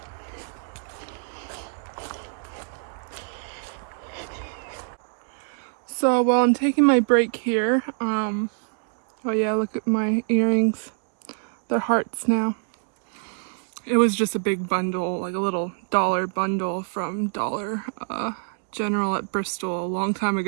So while I'm taking my break here, oh yeah, look at my earrings. They're hearts now. It was just a big bundle, like a little dollar bundle from Dollar General at Bristol a long time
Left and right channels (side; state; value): left; silent; 59 dB below the other